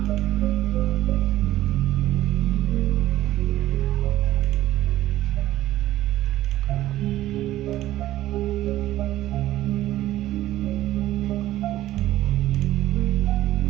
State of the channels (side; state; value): left; quieter; 14.7 dB